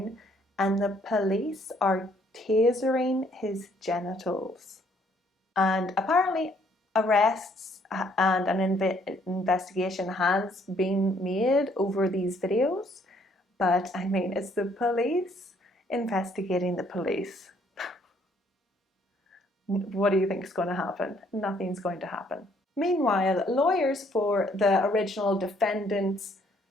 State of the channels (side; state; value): both; normal; correlation 0.65